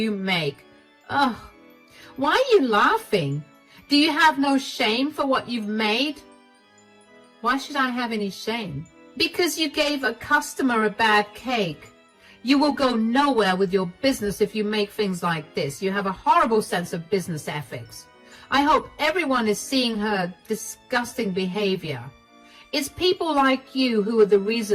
make? Ugh. Why are you laughing? Do you have no shame for what you've made? Why should I have any shame? Because you gave a customer a bad cake. You will go nowhere with your business if you make things like this. You have a horrible sense of business ethics. I hope everyone is seeing her disgusting behavior. It's people like you who are the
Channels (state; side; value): identical; both; correlation 1.00